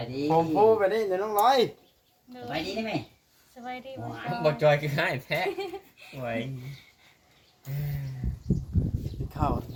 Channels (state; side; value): identical; both; correlation 1.00